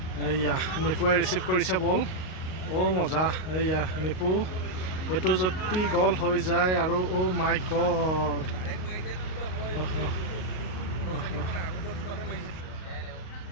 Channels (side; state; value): right; late; 38 ms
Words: এয়া নিপুৱে ৰিচিভ কৰিছে বল মজা এয়া নিপু এইটো যদি গল হৈ যায় আৰু মাই গড